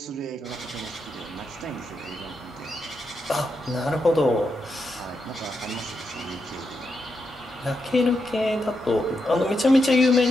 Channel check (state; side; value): normal; both; correlation 0.84